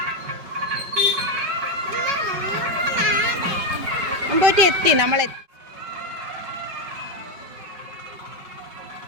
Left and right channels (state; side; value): late; left; 5.2 ms